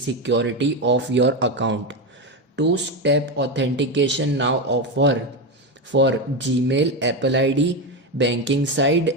of your account. Two-step authentication now offer for Gmail, Apple ID, banking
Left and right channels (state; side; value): normal; both; correlation 0.13